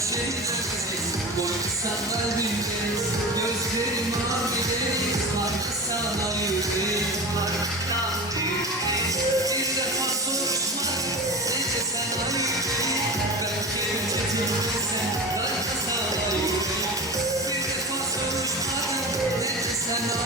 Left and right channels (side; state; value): both; normal; correlation 0.29